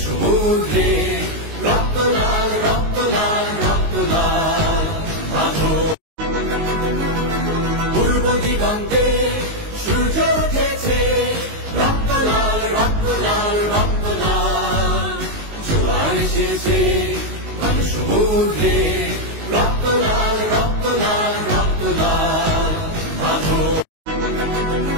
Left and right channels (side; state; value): left; late; 19 ms